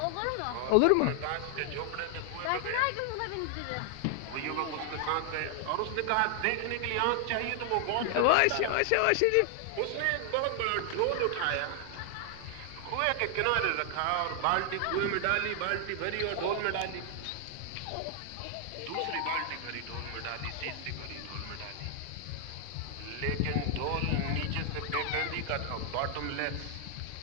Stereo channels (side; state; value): both; different; correlation 0.00